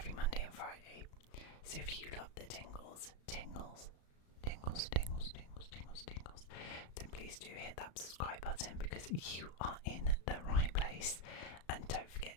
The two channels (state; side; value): late; right; 35 ms